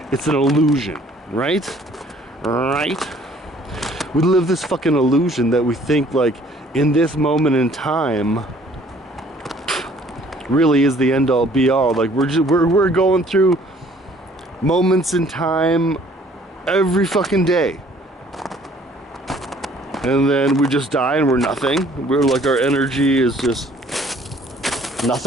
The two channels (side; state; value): both; normal; correlation 0.57